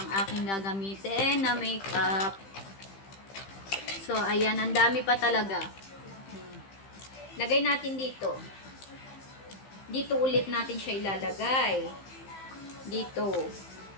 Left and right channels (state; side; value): late; right; 15 ms